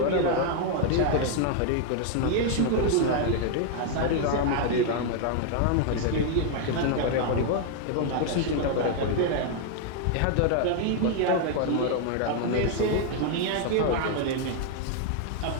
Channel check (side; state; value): both; different; correlation 0.00